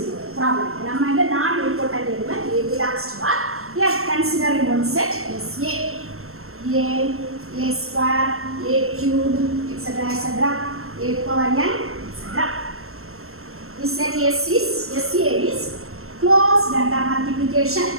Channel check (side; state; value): left; late; 0.62 ms